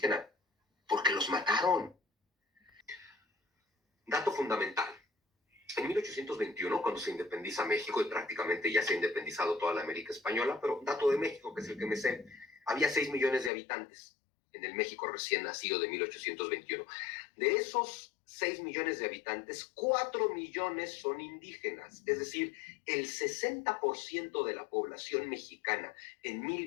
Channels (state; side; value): drops out; right; at 13.5 s